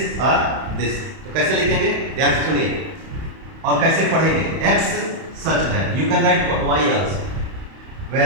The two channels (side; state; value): left; late; 31 ms